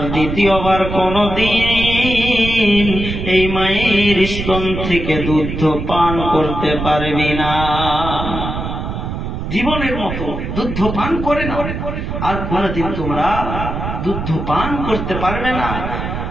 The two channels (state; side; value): noise; right; rumble, 5 dB below the sound